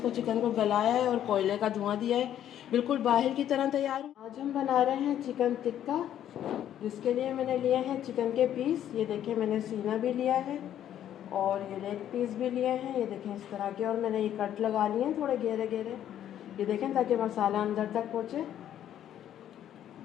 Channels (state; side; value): quieter; right; 10.9 dB